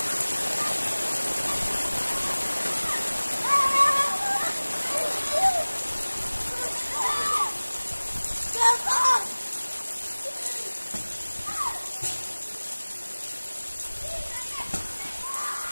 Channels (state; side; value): inverted; both; correlation -1.00